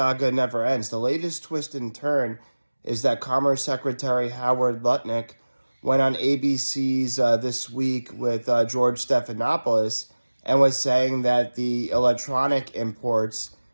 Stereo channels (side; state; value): both; inverted; correlation -1.00